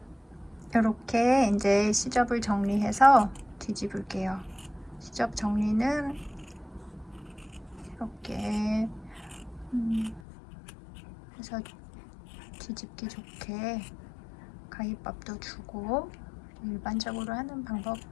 이렇게 이제 시접을 정리해서 뒤집을게요. 시접 정리는 이렇게 해서 뒤집기 좋게 가위밥도 주고 일반적으로 하는 방법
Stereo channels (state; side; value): drops out; right; at 10.2 s